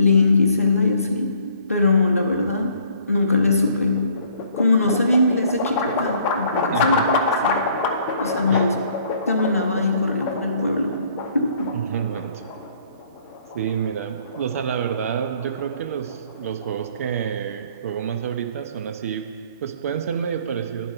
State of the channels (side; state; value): both; inverted; correlation -0.60